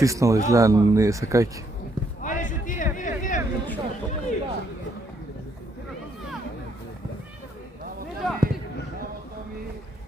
изгледа, не сакајки. Ајде, шутире.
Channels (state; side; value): normal; both; correlation 0.72